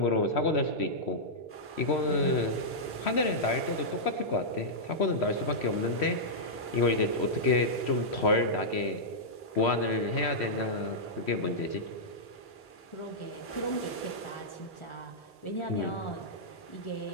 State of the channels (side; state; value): both; normal; correlation -0.10